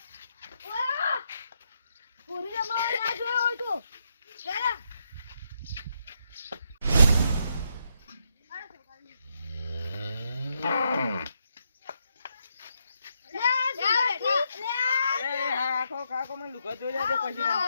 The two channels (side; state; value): both; inverted; correlation -0.79